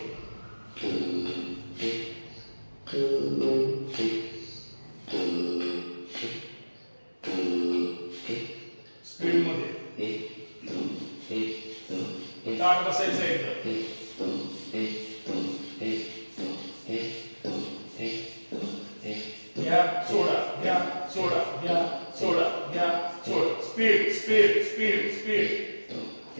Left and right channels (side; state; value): both; inverted; correlation -1.00